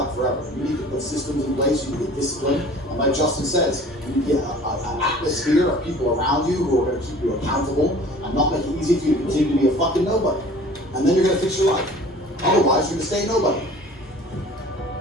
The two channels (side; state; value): both; normal; correlation 0.47